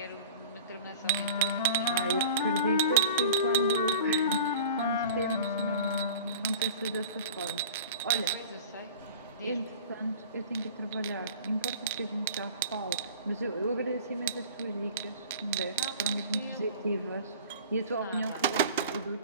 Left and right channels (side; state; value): both; inverted; correlation -0.41